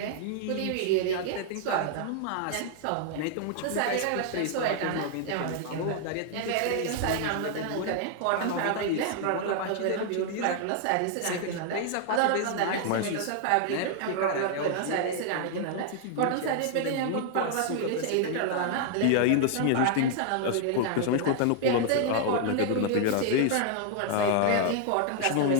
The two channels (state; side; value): different; both; correlation 0.00